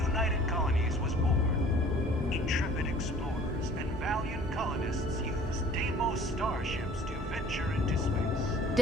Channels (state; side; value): normal; both; correlation 0.50